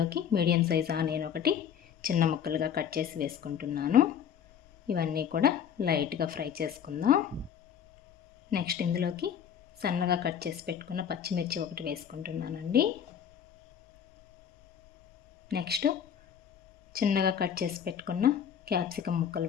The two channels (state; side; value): quieter; right; 8.4 dB